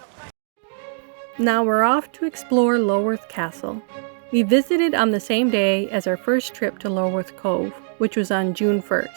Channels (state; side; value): silent; left; 64 dB below the other